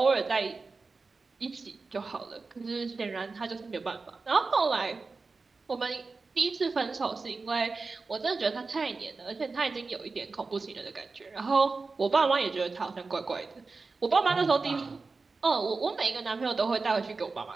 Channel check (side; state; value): left; quieter; 4.1 dB